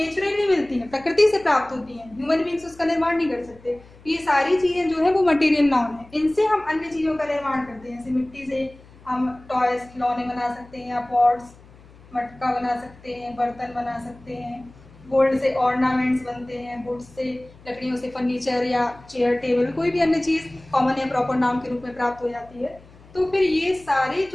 मिलती हैं, प्रकृति से प्राप्त होती हैं, ह्यूमन बींग्स उसका निर्माण नहीं कर सकते। ये सारी चीज़ें जो है वो मटेरियल नाउन है, इनसे हम अन्य चीज़ों का निर्माण करते हैं। जैसे मिट्टी से हम टॉयज, खिलौने बना सकते हैं, या पॉट्स, मटका बना सकते हैं, बर्तन बना सकते हैं। गोल्ड से ऑर्नामेंट्स बनते हैं, वुड से, लकड़ियों से फर्नीचर या चेयर, टेबल, कोई भी अन्य चीज़ कॉमन या प्रॉपर नाउन के रूप में प्राप्त हो जाती है। तो फिर ये सारी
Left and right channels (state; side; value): noise; left; hum, 24 dB below the sound